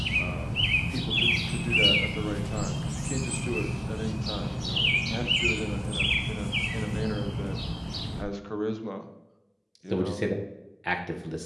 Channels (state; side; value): identical; both; correlation 1.00